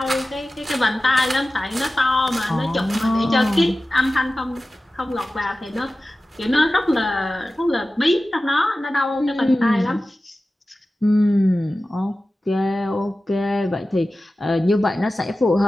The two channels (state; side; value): normal; both; correlation 0.95